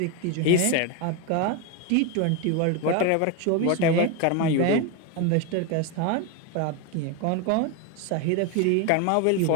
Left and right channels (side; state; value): both; different; correlation 0.02